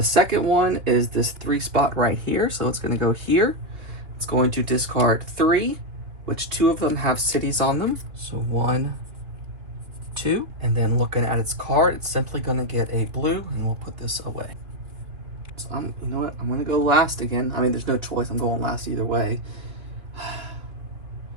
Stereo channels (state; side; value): late; left; 2.9 ms